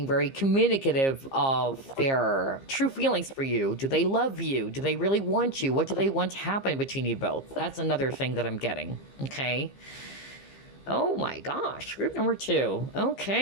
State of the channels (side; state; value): right; late; 15 ms